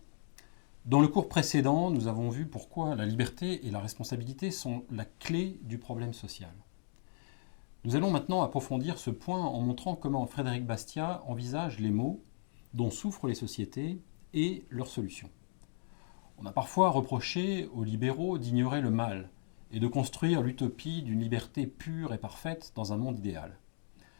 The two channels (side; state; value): right; silent; digital silence